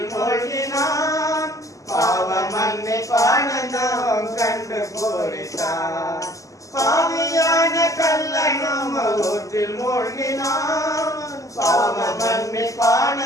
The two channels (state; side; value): late; right; 0.16 ms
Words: மூழ்கினான், பாவ மன்னிப்பானந்தம் கண்டு பூரித்தான். பாவியான கள்ளனும் ஊற்றில் மூழ்கினான், பாவ